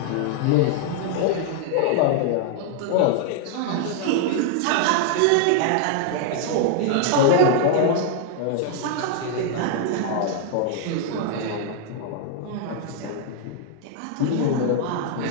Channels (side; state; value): both; different; correlation -0.01